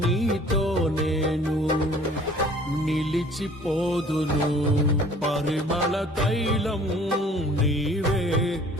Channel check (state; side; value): normal; both; correlation 0.52